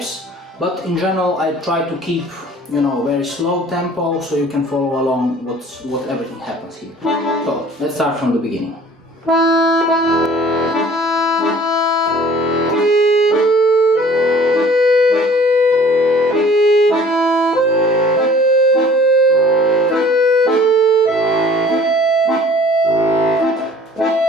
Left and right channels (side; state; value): both; normal; correlation 0.50